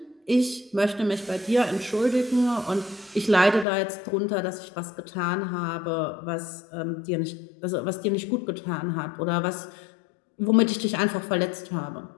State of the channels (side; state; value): right; drops out; at 3.7 s